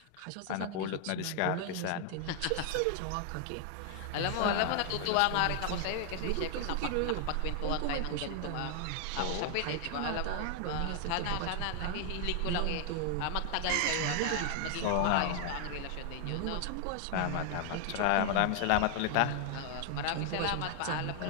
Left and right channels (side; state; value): both; different; correlation 0.00